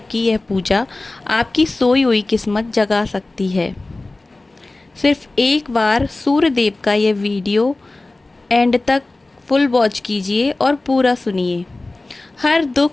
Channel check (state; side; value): quieter; right; 3.0 dB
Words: की यह पूजा आपकी सोई हुई किस्मत जगा सकती है। सिर्फ एक बार सूर्य देव का यह वीडियो एंड तक फुल वॉच कीजिए और पूरा सुनिए। हर